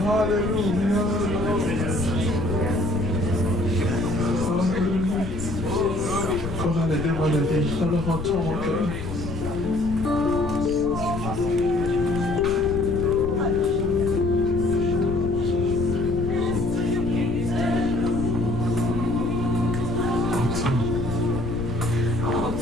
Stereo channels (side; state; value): left; noise; rumble, 8 dB below the sound